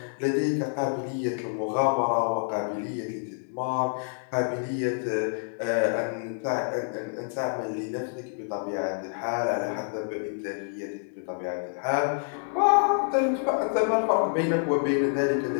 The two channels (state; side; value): silent; right; digital silence